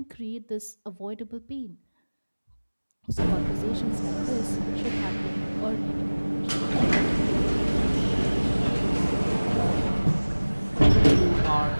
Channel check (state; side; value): inverted; both; correlation -1.00